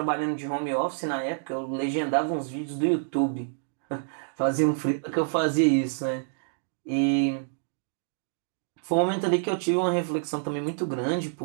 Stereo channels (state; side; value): silent; left; digital silence